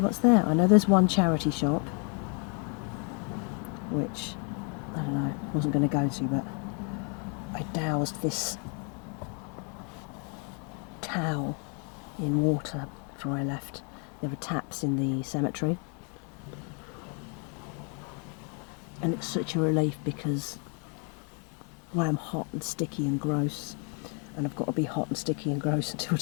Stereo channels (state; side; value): quieter; right; 37.6 dB